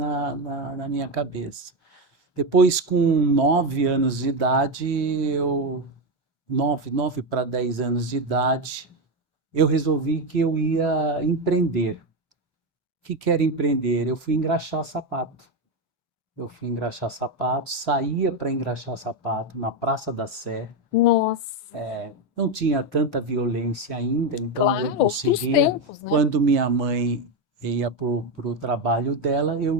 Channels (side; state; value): both; normal; correlation 0.10